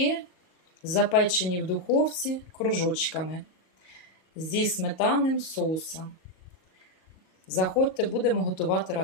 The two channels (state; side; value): late; right; 38 ms